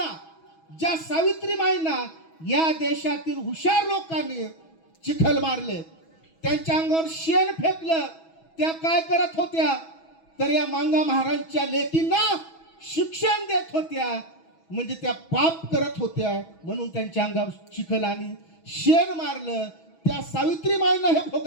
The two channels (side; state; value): right; late; 6.2 ms